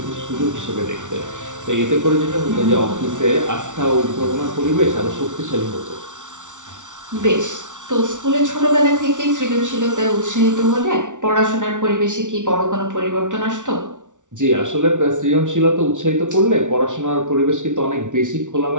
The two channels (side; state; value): left; late; 0.87 ms